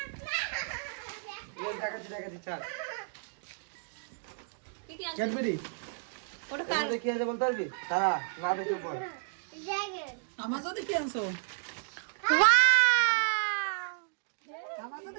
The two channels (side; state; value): left; silent; digital silence